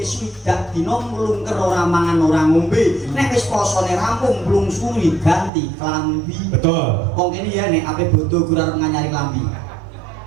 20 dina mlungker ora mangan ora ngombe nek wis posone rampung blungsuli ganti klambi betul wong kene ya nek ape bodho kurang nganyari klambi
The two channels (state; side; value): drops out; left; at 5.5 s